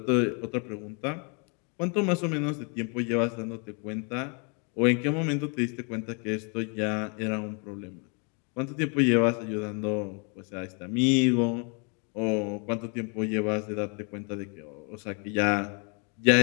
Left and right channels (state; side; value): quieter; right; 36.1 dB